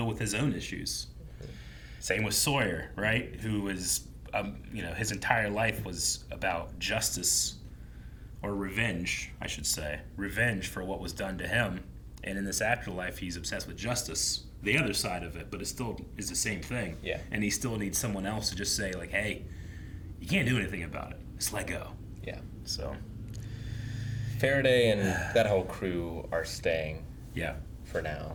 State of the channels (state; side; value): identical; both; correlation 1.00